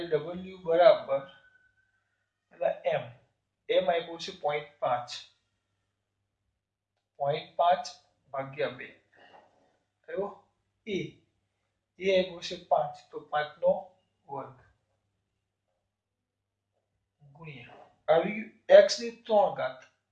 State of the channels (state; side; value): identical; both; correlation 1.00